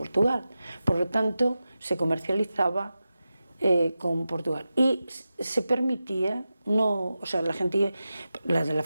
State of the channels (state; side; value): inverted; both; correlation -0.92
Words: por lo tanto se comercializaba con Portugal y se permitía, no, o sea, la gente, la de la